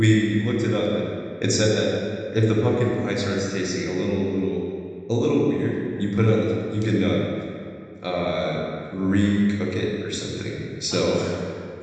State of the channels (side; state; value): both; identical; correlation 1.00